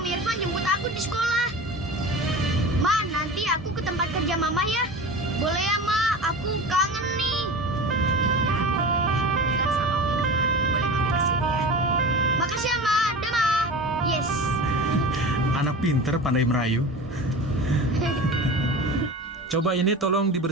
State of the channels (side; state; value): both; normal; correlation 0.32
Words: Irfan jemput aku di sekolah. Ma, nanti aku ke tempat kerja Mama ya. Boleh ya, Ma? Aku kangen nih. Ya, boleh. Bilang sama Om Irfan. Boleh mampir ke sini ya. Makasih ya, Ma. Dah, Ma. Yes. Anak pinter pandai merayu. Coba ini tolong